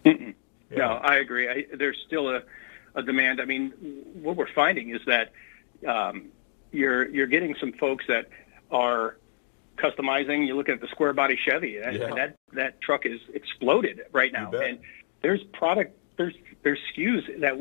Mm-mm. Yeah, no, I agree. There's still a demand. I mean, what we're finding is that you're getting some folks that are customizing. You look at the square body Chevy. That truck is exploded right now. You bet. And there's SKUs that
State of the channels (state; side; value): silent; right; digital silence